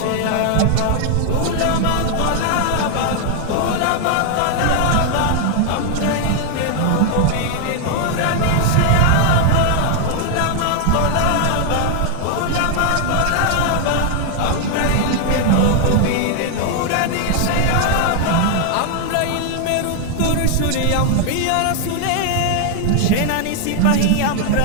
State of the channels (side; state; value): both; different; correlation 0.00